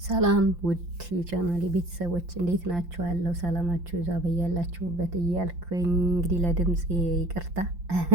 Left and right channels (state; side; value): late; left; 5.7 ms